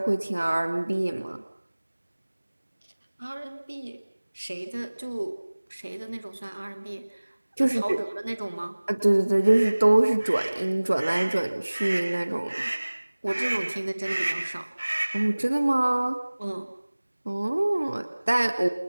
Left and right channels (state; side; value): inverted; both; correlation -1.00